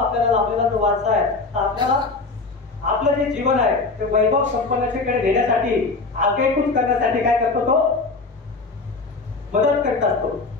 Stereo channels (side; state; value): right; quieter; 3.8 dB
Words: लाभलेला जो वारसा आहे, आपल्याला आपलं जे जीवन आहे ते वैभव संपन्नतेकडे नेण्यासाठी आगेकूच करण्यासाठी काय करतो तो मदत करत असतो